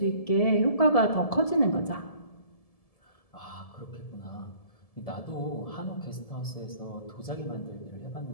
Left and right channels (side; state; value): right; late; 1.7 ms